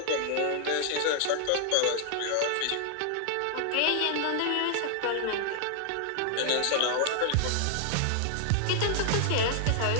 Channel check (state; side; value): different; both; correlation 0.00